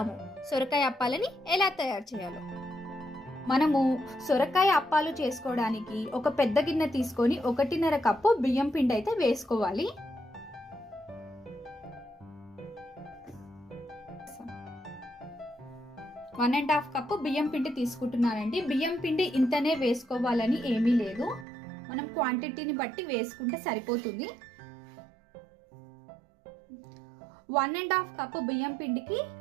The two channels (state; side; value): drops out; left; at 21.5 s